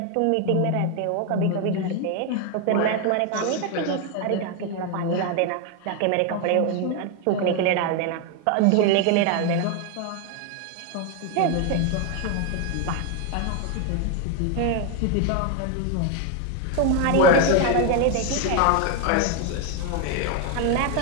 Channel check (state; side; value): different; both; correlation 0.01